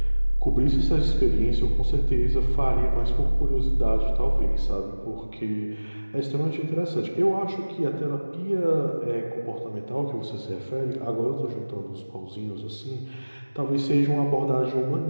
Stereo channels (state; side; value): inverted; both; correlation -1.00